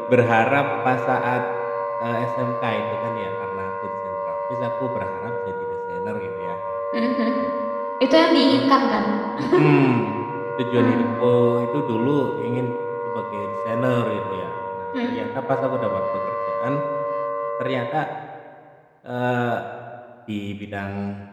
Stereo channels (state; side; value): identical; both; correlation 1.00